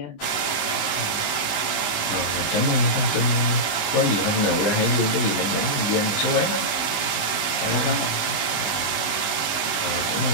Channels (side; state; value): right; late; 19 ms